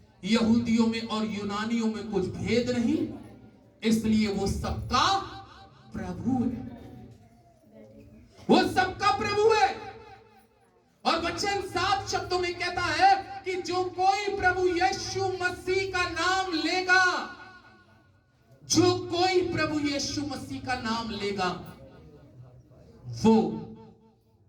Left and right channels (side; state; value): both; identical; correlation 1.00